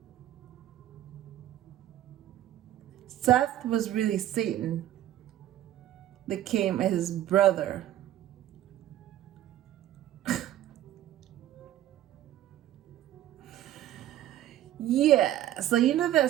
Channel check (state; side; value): quieter; left; 12.8 dB